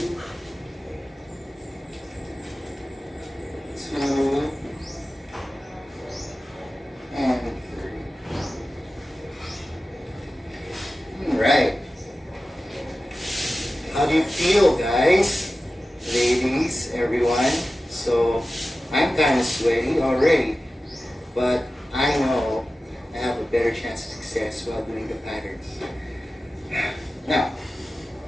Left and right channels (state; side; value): normal; both; correlation 0.95